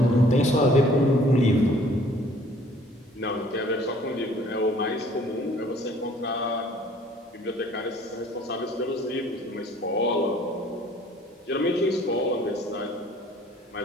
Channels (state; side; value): normal; both; correlation 0.55